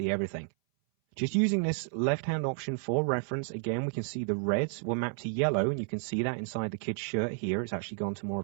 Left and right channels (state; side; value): silent; left; 57 dB below the other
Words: everything. Just using this left-hand option for reference, again, we can see the reds were mapped to yellow, and you can see that inside the kid's shirt here. It's actually gone to more